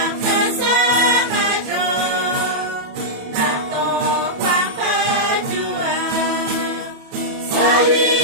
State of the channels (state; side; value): late; left; 28 ms